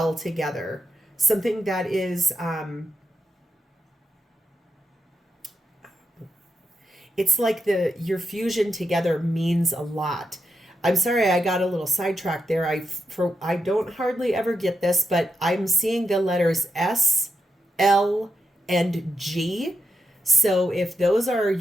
together, something that is... it's like your fusion together means a lot. I'm sorry I got a little sidetracked there. I don't hardly ever get this, but I'm seeing the letters S, L, and G. So if those are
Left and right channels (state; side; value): normal; both; correlation 0.85